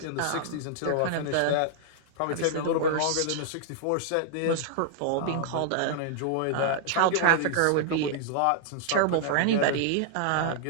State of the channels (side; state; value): both; different; correlation -0.01